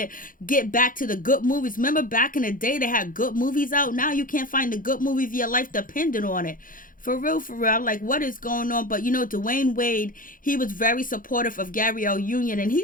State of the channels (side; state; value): right; late; 0.40 ms